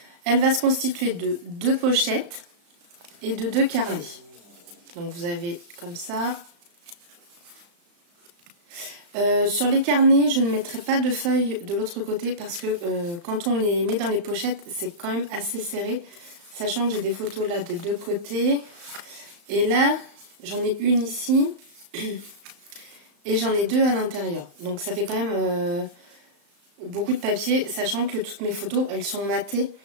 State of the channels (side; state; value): left; late; 35 ms